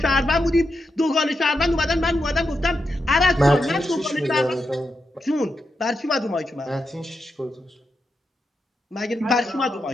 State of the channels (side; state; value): both; normal; correlation 0.86